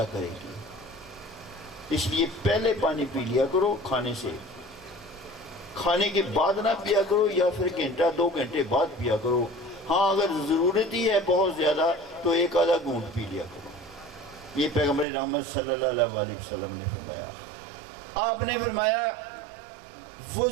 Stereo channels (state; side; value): drops out; left; at 15.1 s